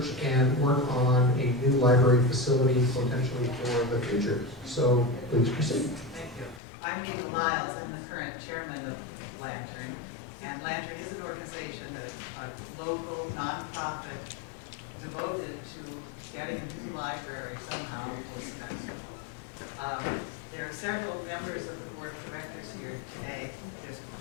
and work on a new library facility potentially for the future. So please proceed. Thank you. I'm Nita Lyles. I'm the current chairman of Lantern. And Lantern is an organization, a local nonprofit devoted to getting a new library somehow for Sebastopol. There are several members of the board of directors here today. There's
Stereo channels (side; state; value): right; drops out; at 6.6 s